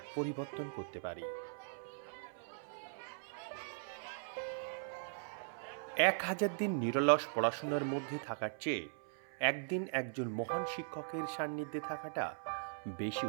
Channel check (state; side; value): silent; left; 51 dB below the other